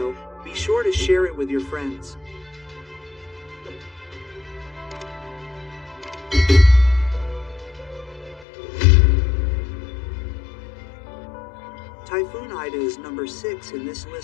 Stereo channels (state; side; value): drops out; right; at 8.5 s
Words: be sure to share it with your friends. Typhoon Ida is number 6 in this